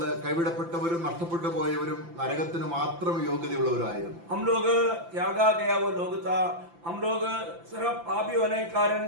കൈവിടപ്പെട്ടവരും നഷ്ടപ്പെട്ടു പോയവരും നരകത്തിന് മാത്രം യോഗ്യതയുള്ളവരായിരുന്നു. हम लोग त्यागा गया वो लोग था. हम लोग सिर्फ पापी होने के कारण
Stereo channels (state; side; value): late; left; 5.9 ms